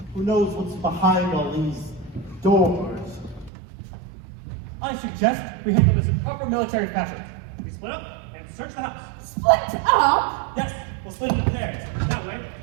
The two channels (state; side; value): drops out; left; at 3.5 s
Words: Who knows what's behind all these doors? I suggest we handle this in proper military fashion. We split up and search the house. Split up? Yes, we'll split into pairs. That way,